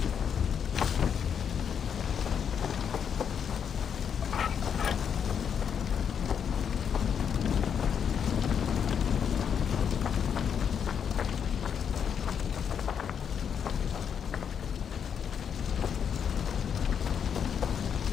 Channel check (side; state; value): right; quieter; 7.6 dB